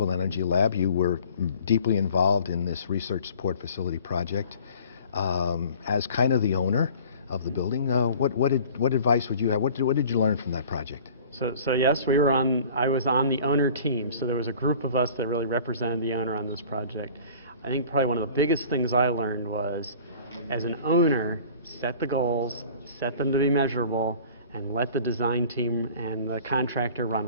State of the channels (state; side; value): inverted; both; correlation -0.47